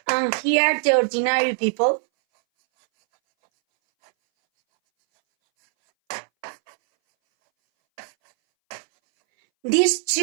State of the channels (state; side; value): silent; left; 62 dB below the other